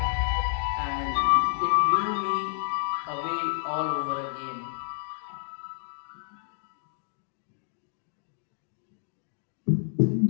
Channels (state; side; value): silent; right; digital silence